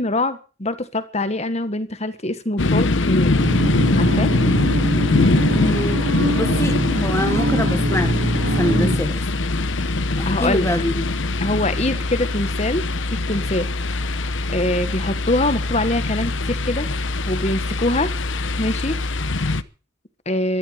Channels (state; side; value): normal; both; correlation 0.59